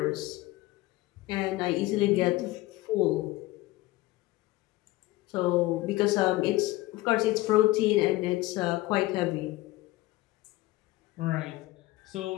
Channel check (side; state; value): right; quieter; 18.5 dB